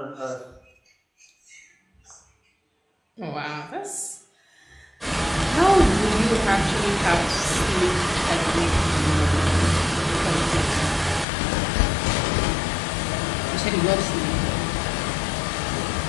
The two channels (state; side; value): drops out; right; at 11.2 s